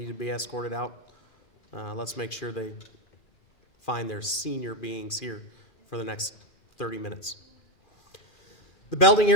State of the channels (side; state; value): right; late; 2.4 ms